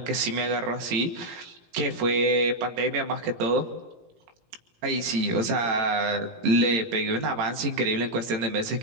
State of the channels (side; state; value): left; late; 17 ms